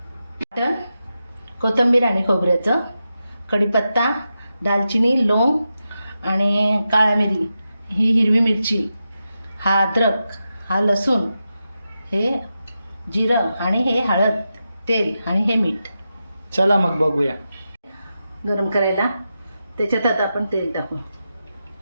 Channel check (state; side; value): inverted; both; correlation -0.89